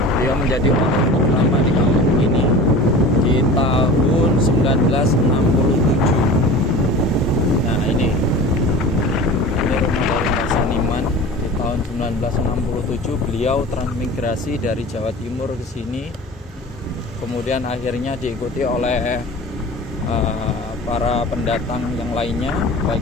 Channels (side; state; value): both; normal; correlation 0.37